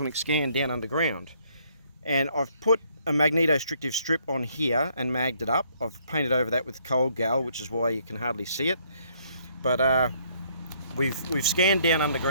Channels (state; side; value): inverted; both; correlation -0.67